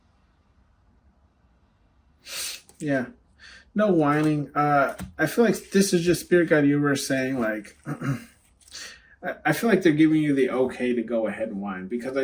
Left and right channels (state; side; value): identical; both; correlation 1.00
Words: yeah, no whining. I feel like this is just Spirit Guide Universe saying, like, I feel like they're giving you the okay to go ahead and whine, because I